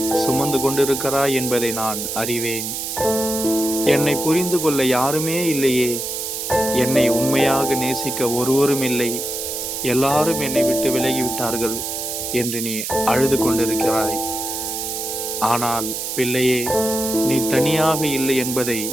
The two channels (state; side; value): noise; right; hiss, 4 dB below the sound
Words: சுமந்து கொண்டிருக்கிறாய் என்பதை நான் அறிவேன். என்னை புரிந்து கொள்ள யாருமே இல்லையே, என்னை உண்மையாக நேசிக்க ஒருவரும் இல்லை, எல்லாரும் என்னை விட்டு விலகிவிட்டார்கள் என்று நீ அழுது கொண்டிருக்கிறாய். ஆனால் பிள்ளையே, நீ தனியாக இல்லை என்பதை